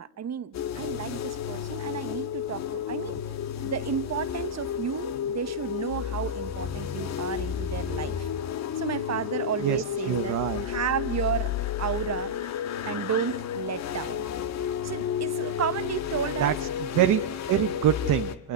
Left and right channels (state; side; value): normal; both; correlation -0.07